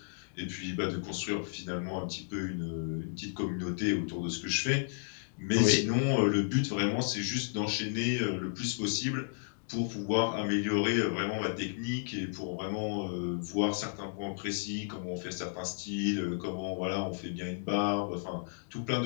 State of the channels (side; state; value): right; silent; digital silence